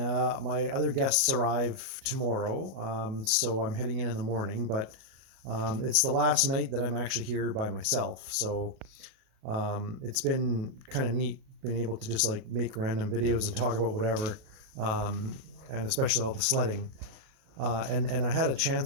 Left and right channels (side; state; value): left; late; 37 ms